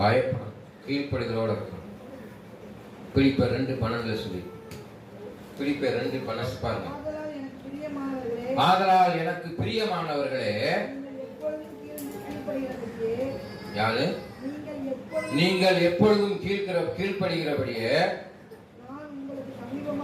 பயப்படும் கீழ்ப்படிதலோடு இருக்கணும். பிலிப்பியர் 2:12 சொல்லி, பிலிப்பியர் 2:12 பாருங்க. ஆதலால் எனக்கு பிரியமானவர்களே, யாரு? நீங்கள் எப்பொழுதும் கீழ்ப்படுகிறபடியே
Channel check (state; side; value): identical; both; correlation 1.00